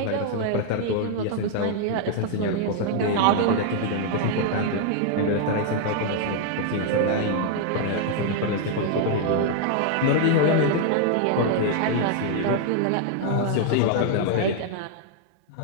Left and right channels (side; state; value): both; different; correlation 0.00